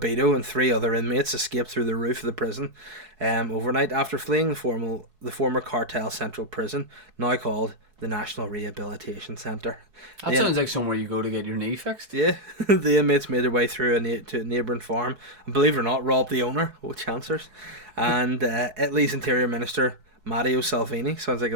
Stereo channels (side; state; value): left; late; 4.7 ms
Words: and 3 other inmates escaped through the roof of the prison overnight after fleeing the former cartel central prison, now called the National Rehabilitation Centre. That sounds like somewhere you go to get your knee fixed. Yeah, the inmates made their way through to a neighbouring farm and, believe it or not, robbed the owner. Oh, chancers. And Italy's Interior Minister Matteo Salvini, sounds like